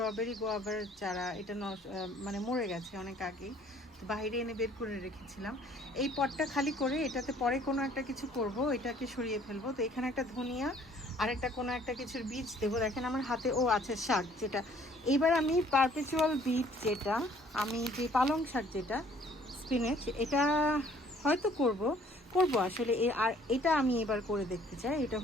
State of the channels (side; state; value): both; normal; correlation 0.58